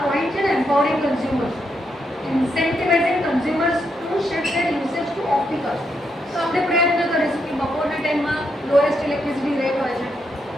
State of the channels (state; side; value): normal; both; correlation 0.80